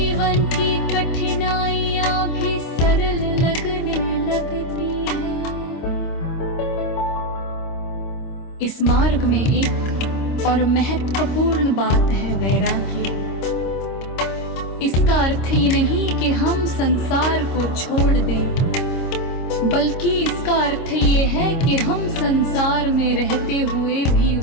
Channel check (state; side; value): late; right; 26 ms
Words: की कठिनाइयां भी सरल लगने लगती है। इस मार्ग में एक और महत्वपूर्ण बात है वैराग्य। इसका अर्थ ये नहीं कि हम संसार को छोड़ दें, बल्कि इसका अर्थ ये है कि हम संसार में रहते हुए भी